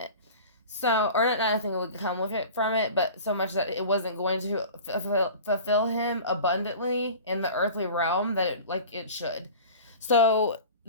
So, or not nothing would come from it, but so much that it wasn't going to fulfill him abundantly in the earthly realm that it should. So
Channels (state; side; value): inverted; both; correlation -0.39